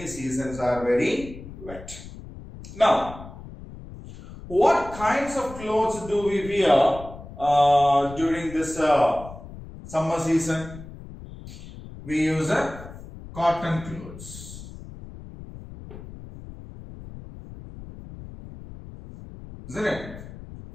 seasons are very wet. Now, what kinds of clothes do we wear during this summer season? We use cotton clothes, isn't it?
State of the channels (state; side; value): noise; left; rumble, 14 dB below the sound